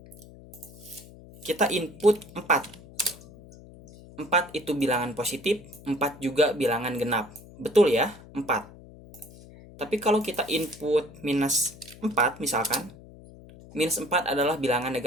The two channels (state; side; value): noise; left; hum, 19 dB below the sound